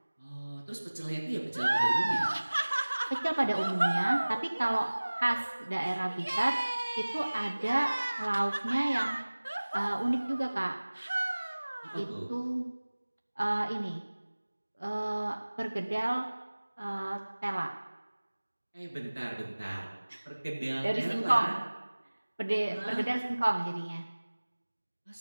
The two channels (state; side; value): inverted; both; correlation -1.00